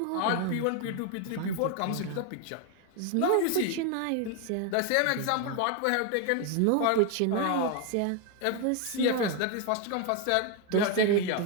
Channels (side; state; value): both; different; correlation 0.01